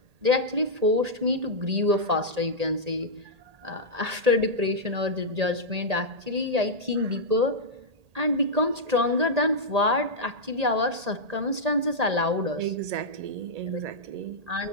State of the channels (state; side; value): late; left; 1.8 ms